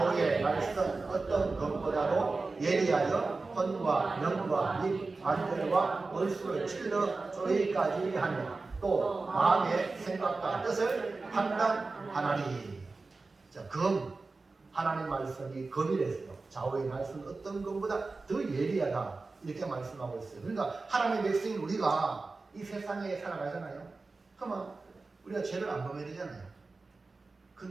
말씀 어떤 것보다도 예리하여 혼과 영과 및 관절과 원수를 찔러 쪼이까지 하며 또 마음의 생각과 뜻을 판단하나니. 자, 검. 하나님 말씀이 검이랬어요. 좌우의 말씀은 어떤 것보다 더 예리하다. 이렇게 말씀하고 있어요. 그러니까 하나님의 백성인 우리가 이 세상에 살아가잖아요. 그러면 우리가 죄를 안 범해야 되잖아요.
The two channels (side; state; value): left; quieter; 3.8 dB